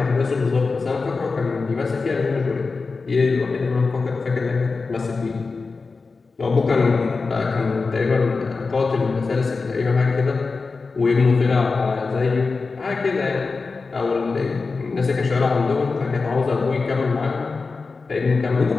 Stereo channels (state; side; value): quieter; right; 4.2 dB